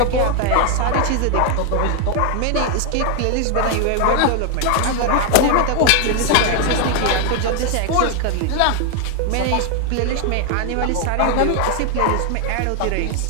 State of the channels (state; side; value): different; both; correlation 0.00